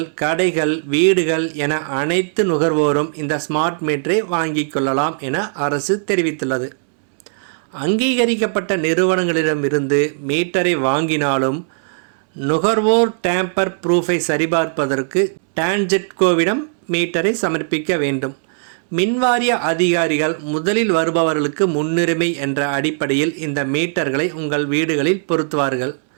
கடைகள், வீடுகள் என அனைத்து நுகர்வோரும் இந்த ஸ்மார்ட் மீட்டரை வாங்கிக் கொள்ளலாம் என அரசு தெரிவித்துள்ளது. அங்கீகரிக்கப்பட்ட நிறுவனங்களிடமிருந்து மீட்டரை வாங்கினாலும் நுகர்வோர் டேம்பர் ப்ரூஃபை சரிபார்ப்பதற்கு டான்ஜெட்கோவிடம் மீட்டரை சமர்ப்பிக்க வேண்டும். மின்வாரிய அதிகாரிகள் முதலில் வருபவர்களுக்கு முன்னுரிமை என்ற அடிப்படையில் இந்த மீட்டர்களை உங்கள் வீடுகளில் பொருத்துவார்கள்.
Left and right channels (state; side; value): silent; left; digital silence